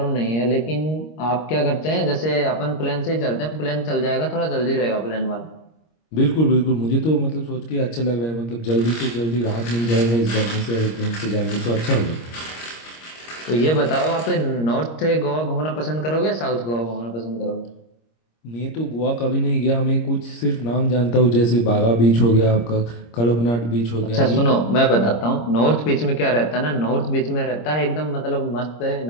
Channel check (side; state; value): right; late; 26 ms